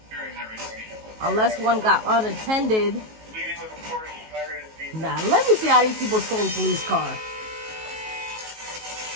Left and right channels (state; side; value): late; left; 19 ms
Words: Unless one got unattended. Nah, let me see how these people stole a police car.